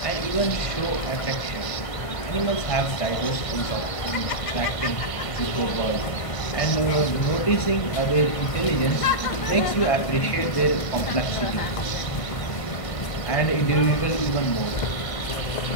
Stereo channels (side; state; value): right; late; 1.5 ms